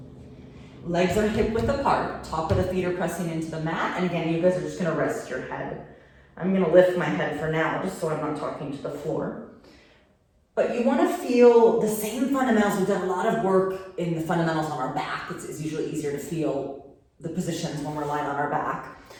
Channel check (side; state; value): both; identical; correlation 1.00